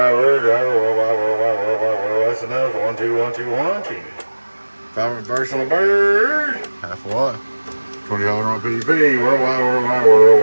that's enough. 1, 2, 1, 2, 1, 2. 5 reverse on the bird. Half a watt. 20 on PEP. Worldwide.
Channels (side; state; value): both; inverted; correlation -1.00